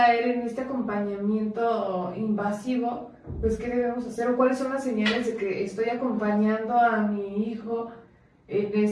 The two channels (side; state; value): both; identical; correlation 1.00